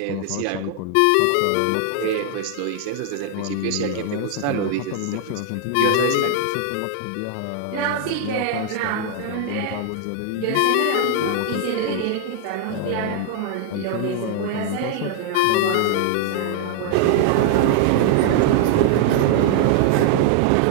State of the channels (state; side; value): different; both; correlation 0.00